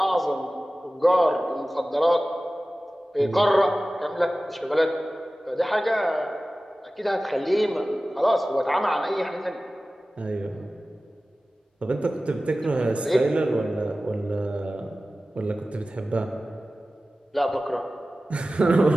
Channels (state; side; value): normal; both; correlation 0.96